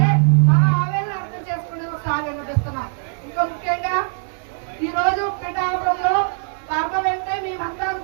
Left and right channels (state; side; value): silent; left; digital silence